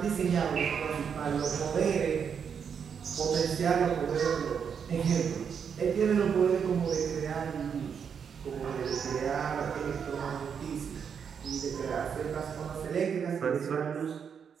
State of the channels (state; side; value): quieter; left; 7.1 dB